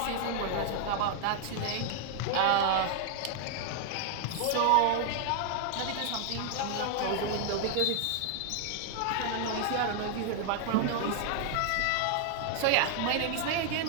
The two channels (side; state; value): both; different; correlation 0.00